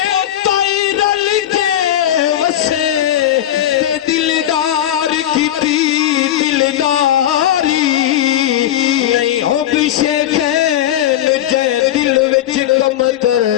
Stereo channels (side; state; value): right; quieter; 11.8 dB